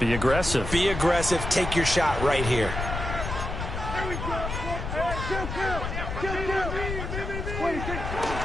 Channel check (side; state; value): left; noise; rumble, 5 dB below the sound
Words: aggressive. Be aggressive. Take your shot right here.